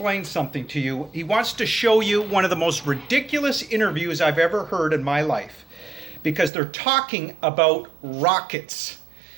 something to you. He wants to show you one of the most ridiculous interviews I've ever heard in my life because they're talking about rockets.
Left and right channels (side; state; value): left; drops out; at 6.5 s